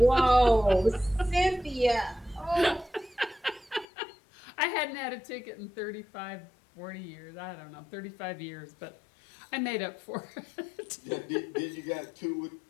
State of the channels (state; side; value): drops out; right; at 3.9 s